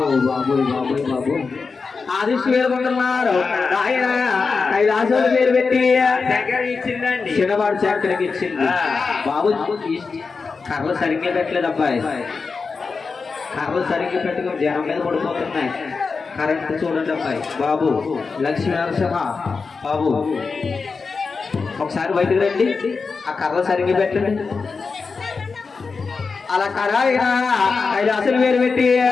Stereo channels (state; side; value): quieter; right; 4.7 dB